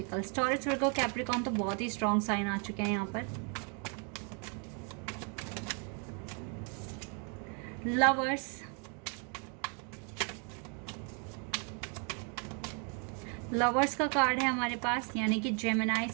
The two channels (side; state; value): left; quieter; 38.2 dB